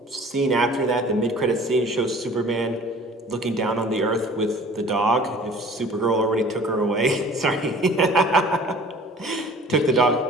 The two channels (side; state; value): both; normal; correlation 0.48